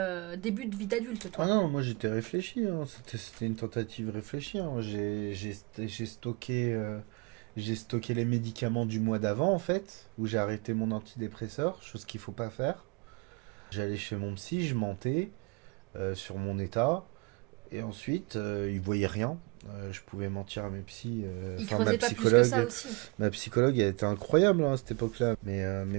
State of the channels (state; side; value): quieter; left; 27.7 dB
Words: début de vie d'adulte, Ah toi. non, moi j'étais réfléchi, hein. C'était une tentative réfléchie, hein. J'ai stocké les médicaments du mois d'avant en fait, où j'ai arrêté mon antidépresseur, chose qu'il faut pas faire. J'allais chez mon psy, je mentais sur mon état, et ensuite il voyait rien. Je pouvais mentir à mes psys. Il Enfin, creusait pas plus que ça aussi. ma psychologue, elle était incroyable hein, à cette époque-là. Mais